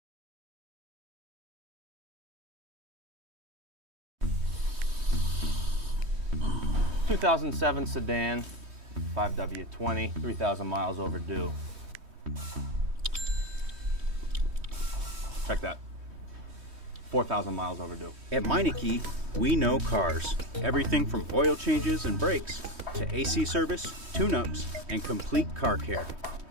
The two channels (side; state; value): left; late; 3.2 ms